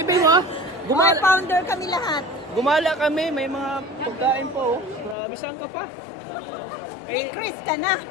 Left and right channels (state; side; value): drops out; right; at 5.2 s